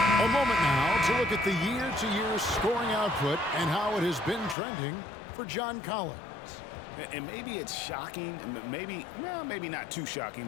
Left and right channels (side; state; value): right; drops out; at 4.5 s